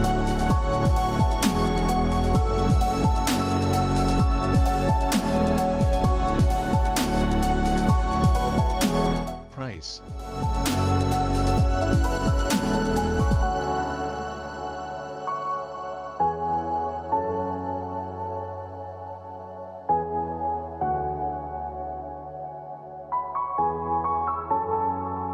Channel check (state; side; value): identical; both; correlation 1.00